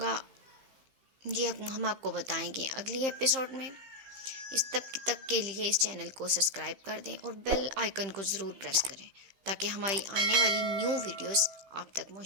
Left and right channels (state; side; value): late; left; 15 ms